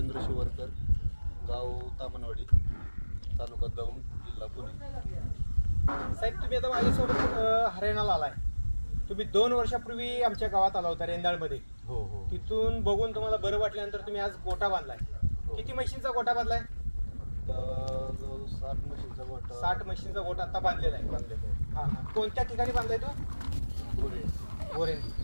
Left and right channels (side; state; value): both; inverted; correlation -1.00